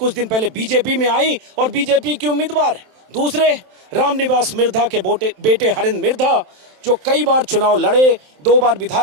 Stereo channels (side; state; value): left; late; 27 ms